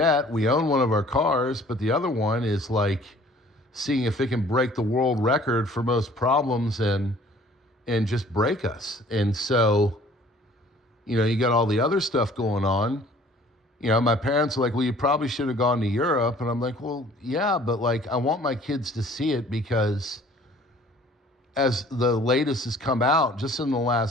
We own one of our cars, but the other one is seeing if it can break the world record for most problems and just break us. And so, you got all the other stuff going on. My parents are like, well, you probably should have gone to Europe. And I'm like, well, yeah, but I want my kids to see it, because as the latest has come out just in the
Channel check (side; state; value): both; normal; correlation 0.53